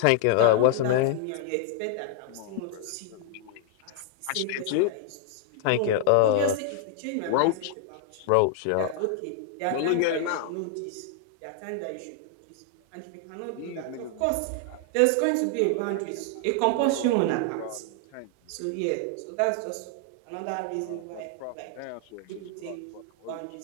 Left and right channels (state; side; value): different; both; correlation 0.00